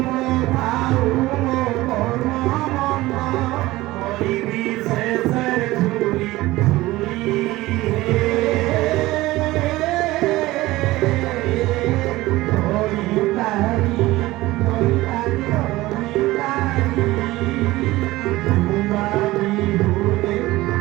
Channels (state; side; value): quieter; left; 18.3 dB